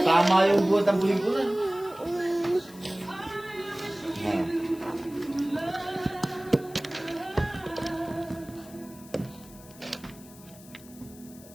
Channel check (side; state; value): left; noise; hiss, 21 dB below the sound